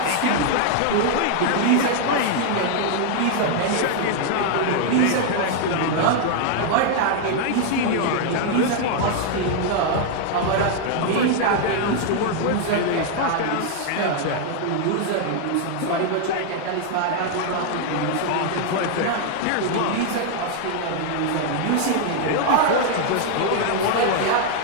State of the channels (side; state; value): both; different; correlation 0.00